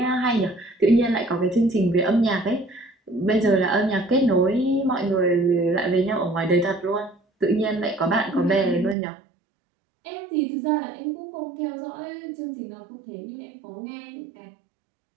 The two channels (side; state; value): left; drops out; at 9.0 s